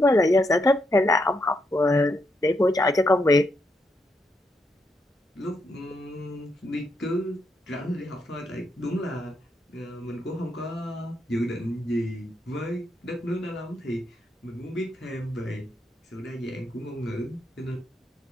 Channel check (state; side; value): normal; both; correlation 0.79